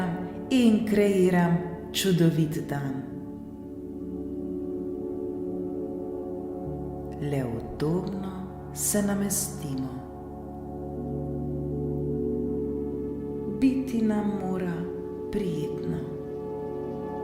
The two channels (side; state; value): both; identical; correlation 1.00